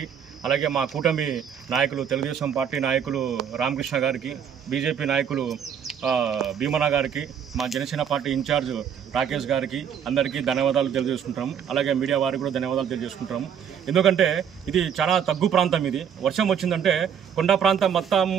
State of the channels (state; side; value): quieter; left; 8.0 dB